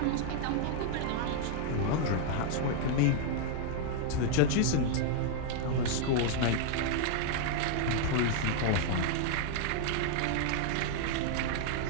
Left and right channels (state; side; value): different; both; correlation -0.01